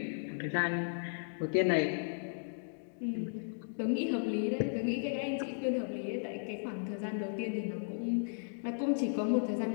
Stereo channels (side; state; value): right; silent; digital silence